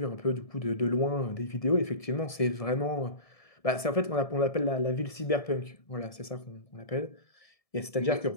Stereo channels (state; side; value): late; right; 1.7 ms